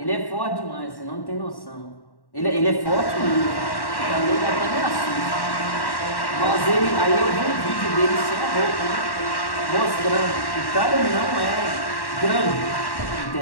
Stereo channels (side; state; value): right; late; 1.1 ms